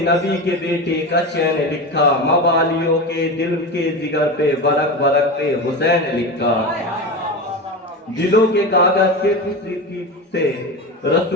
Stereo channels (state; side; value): normal; both; correlation 0.23